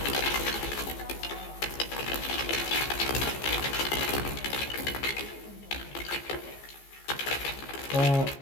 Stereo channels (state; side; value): late; right; 15 ms